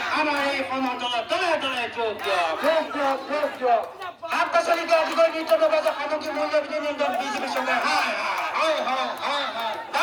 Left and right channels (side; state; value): both; identical; correlation 1.00